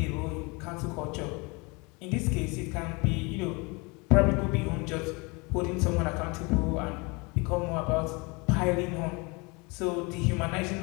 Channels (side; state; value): right; quieter; 28.2 dB